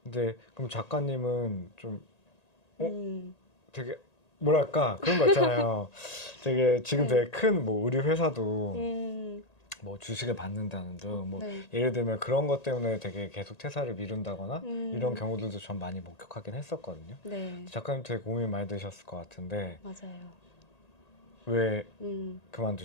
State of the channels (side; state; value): right; late; 1.8 ms